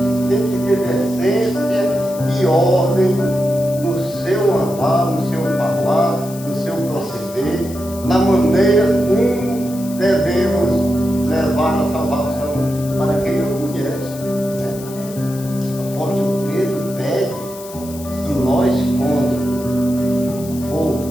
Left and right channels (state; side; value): noise; left; hiss, 16 dB below the sound